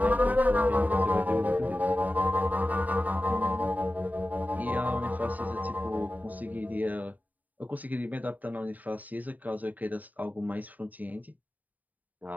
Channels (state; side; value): late; left; 0.079 ms